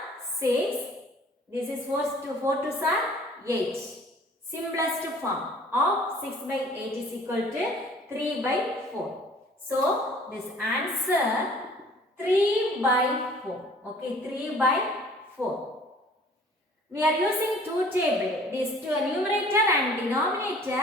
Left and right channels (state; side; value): normal; both; correlation 0.52